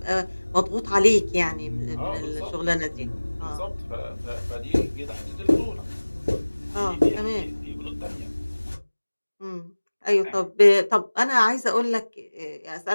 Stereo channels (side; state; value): both; inverted; correlation -1.00